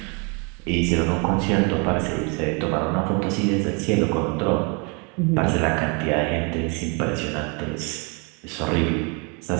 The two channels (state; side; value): quieter; left; 33.0 dB